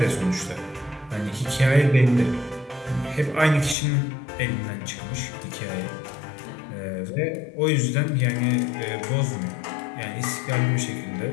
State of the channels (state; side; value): drops out; right; at 3.8 s